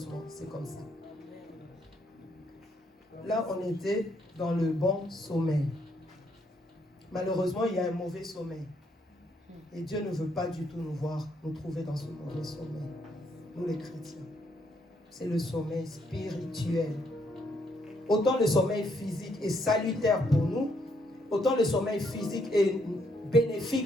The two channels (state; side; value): normal; both; correlation 0.73